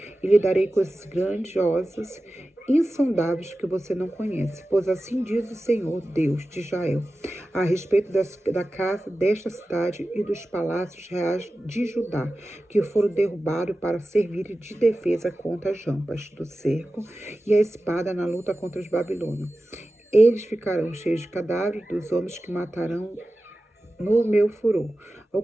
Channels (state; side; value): normal; both; correlation 0.95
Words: E lhe darei coisas grandiosas, insondáveis que você não conhece, pois assim diz o Senhor, Deus de Israel, a respeito da casa desta cidade e dos palácios reais de Judá, que foram derrubados para servir de defesa contra as rampas do cerco e a espada na luta contra os babilônios. Eles ficarão cheios de cadáveres dos homens que matarão no meu furor.